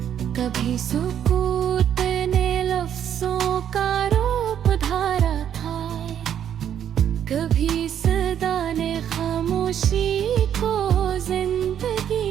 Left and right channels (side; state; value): left; quieter; 9.5 dB